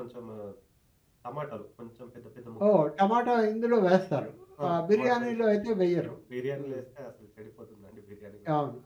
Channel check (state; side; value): identical; both; correlation 1.00